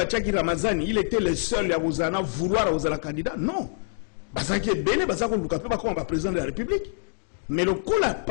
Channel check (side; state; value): right; silent; digital silence